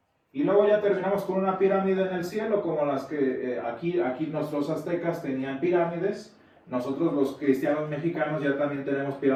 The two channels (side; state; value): both; identical; correlation 1.00